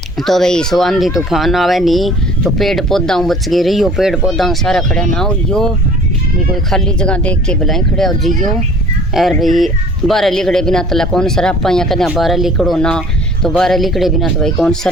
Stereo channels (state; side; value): normal; both; correlation 0.50